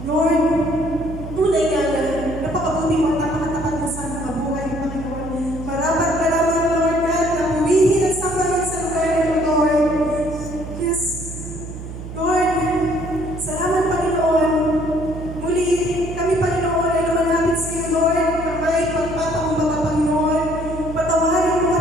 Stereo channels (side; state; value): right; noise; hum, 10 dB below the sound